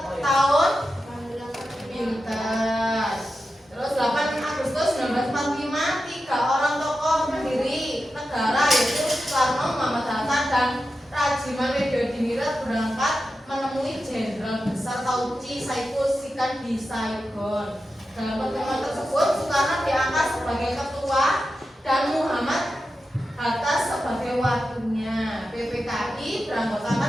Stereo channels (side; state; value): both; normal; correlation 0.91